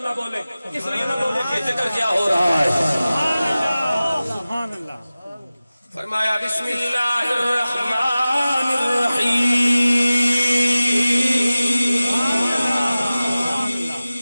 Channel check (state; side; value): inverted; both; correlation -0.97